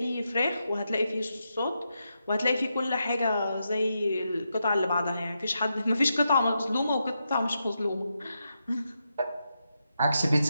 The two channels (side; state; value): both; inverted; correlation -0.85